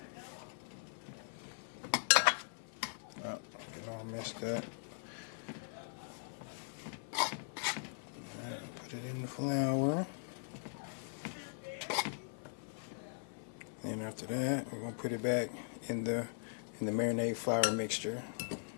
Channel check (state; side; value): silent; right; 51 dB below the other